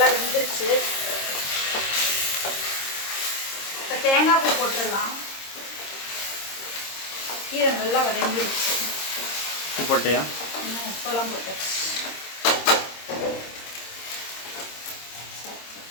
வெந்துருச்சு. இப்போ தேங்காய் பூ போட்டுடலாம். கீரை நல்லா வதங்கிடுச்சு. உப்பு போட்டியா? உப்பெல்லாம் போட்டாச்சு.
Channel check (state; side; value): late; right; 26 ms